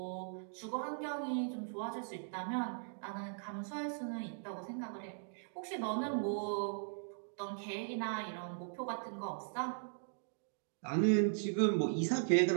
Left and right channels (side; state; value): left; silent; digital silence